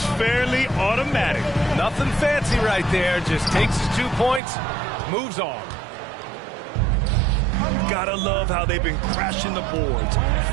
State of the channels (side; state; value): left; drops out; at 4.4 s